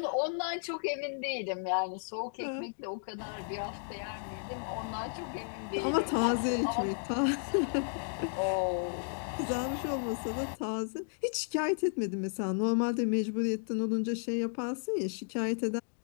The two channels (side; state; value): right; silent; digital silence